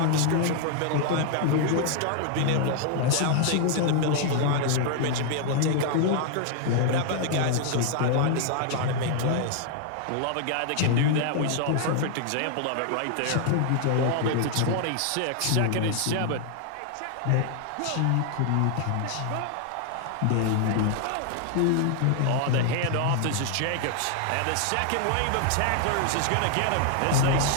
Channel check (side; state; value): both; different; correlation 0.00